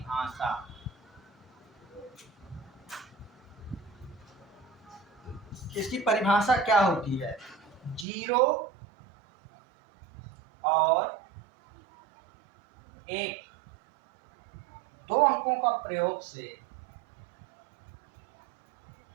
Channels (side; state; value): left; drops out; at 8.1 s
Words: इसकी परिभाषा क्या होती है? 0 और 1 दो अंकों का प्रयोग से,